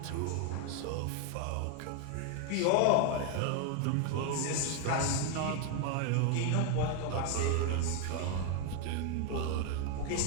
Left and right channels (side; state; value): both; different; correlation 0.01